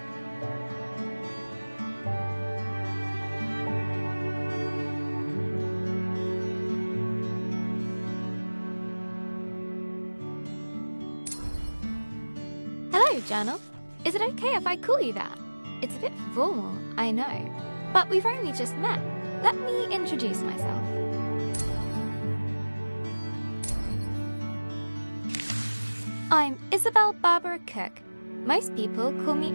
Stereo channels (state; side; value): inverted; both; correlation -1.00